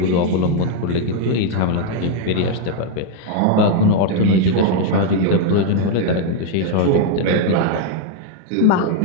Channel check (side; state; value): both; different; correlation 0.01